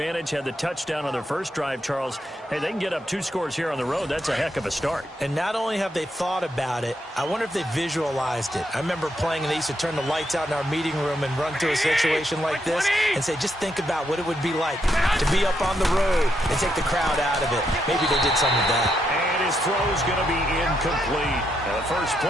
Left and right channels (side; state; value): both; normal; correlation 0.79